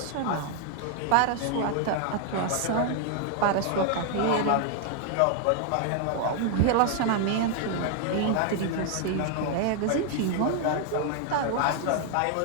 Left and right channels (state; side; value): different; both; correlation 0.00